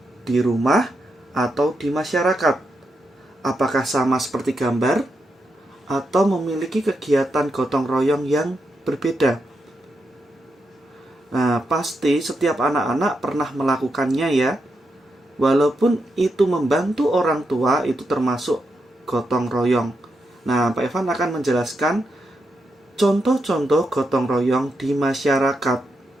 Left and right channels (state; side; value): normal; both; correlation 0.84